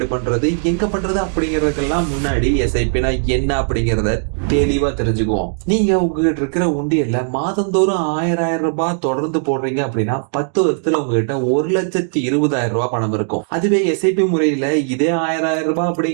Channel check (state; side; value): silent; left; digital silence